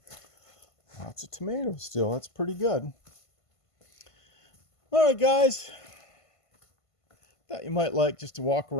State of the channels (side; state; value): right; late; 1.5 ms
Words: lots of tomatoes still. That's pretty good. All right, guys. Thought you might like just to walk